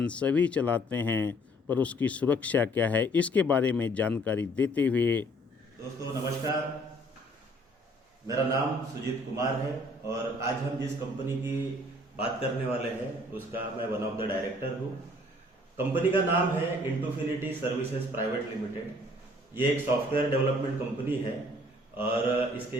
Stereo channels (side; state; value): both; normal; correlation 0.59